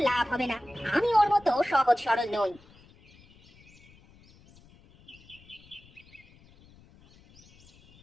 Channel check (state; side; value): noise; left; rumble, 27 dB below the sound